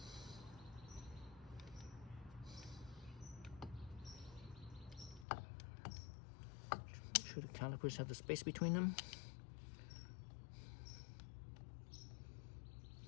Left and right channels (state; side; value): drops out; right; at 5.2 s